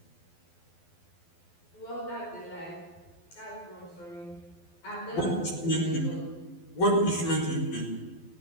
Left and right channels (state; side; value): late; right; 12 ms